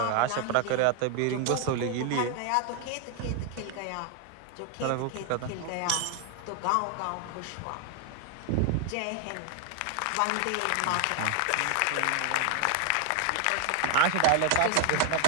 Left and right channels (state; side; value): different; both; correlation 0.00